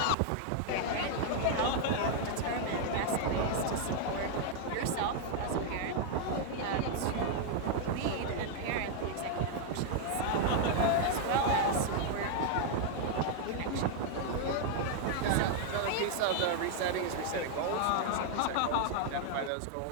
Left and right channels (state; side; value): different; both; correlation 0.00